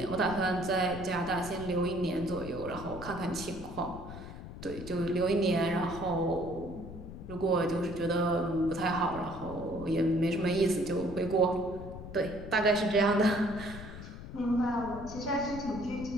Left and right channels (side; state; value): left; noise; rumble, 11 dB below the sound